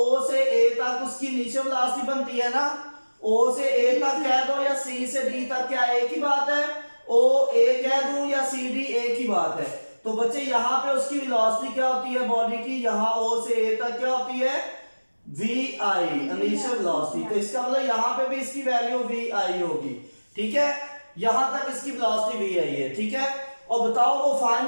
से ए तक उसकी इनिशियल वेलोसिटी बनती है ना, ओ से ए तक कह दो या सी से डी तक, क्या एक ही बात है, ओ ए कह दूं या सी डी एक ही बात है। तो बच्चे यहाँ पे उसकी वेलोसिटी क्या होती है बॉडी की, यहाँ ओ से ए तक क्या होती है, वी आई इनिशियल वेलोसिटी। तो इसका मतलब यहाँ पे भी इसकी वैल्यू वी आई होगी, ठीक है। यहां तक इसकी वेलोसिटी वी आई है, ठीक है। और बताओ वो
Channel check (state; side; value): inverted; both; correlation -1.00